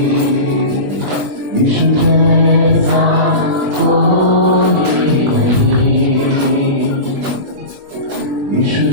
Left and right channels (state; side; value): late; left; 21 ms